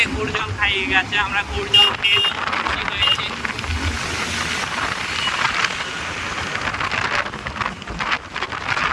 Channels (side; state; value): both; identical; correlation 1.00